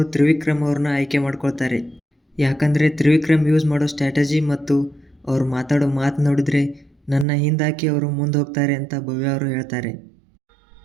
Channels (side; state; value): left; drops out; at 7.2 s